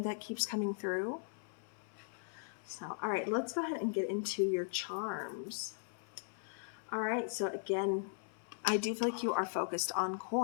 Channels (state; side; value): silent; right; 52 dB below the other